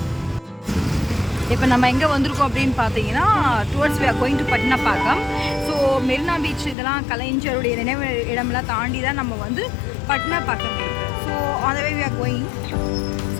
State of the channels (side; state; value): right; drops out; at 6.8 s